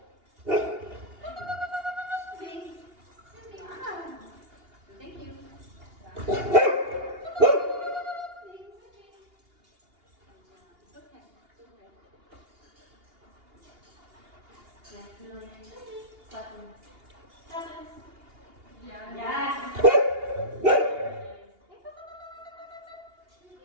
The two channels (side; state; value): left; late; 2.8 ms